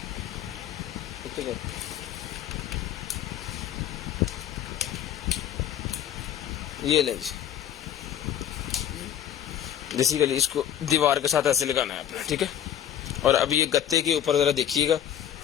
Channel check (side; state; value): right; quieter; 10.5 dB